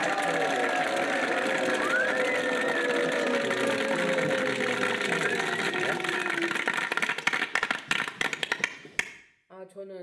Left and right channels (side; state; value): both; identical; correlation 1.00